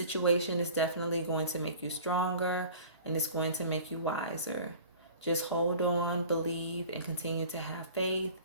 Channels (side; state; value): both; inverted; correlation -0.43